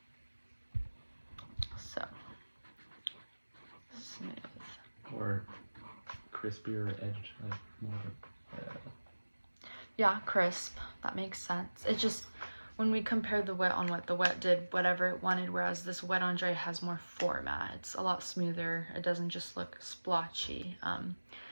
So smooth. Or crispier edge, like more. Yeah, crisp. That makes sense. It's just when we compare the wet on wet, the wet did whatever it wanted, whereas this wet on dry has more format. It's a lot smoother. It doesn't just look splotchy.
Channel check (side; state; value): both; inverted; correlation -1.00